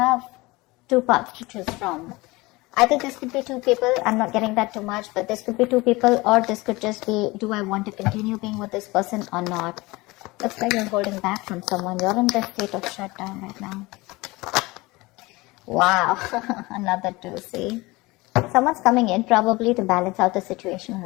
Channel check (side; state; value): right; quieter; 22.3 dB